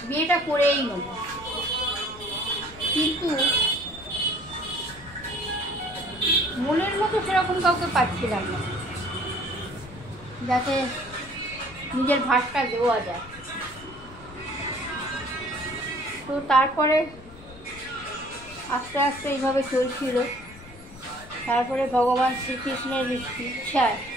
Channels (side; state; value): left; noise; rumble, 19 dB below the sound